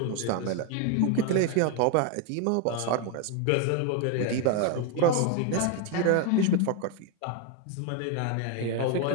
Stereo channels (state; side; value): different; both; correlation 0.01